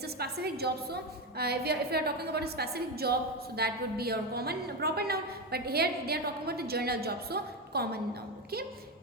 a specific job. So if we are talking about a specific job, so that would be your common proper noun, but here they are talking about the general job, so common noun. Okay,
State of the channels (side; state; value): both; normal; correlation 0.14